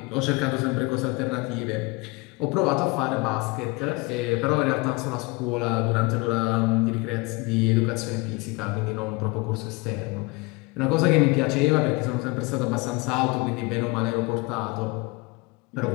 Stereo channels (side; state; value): right; quieter; 25.7 dB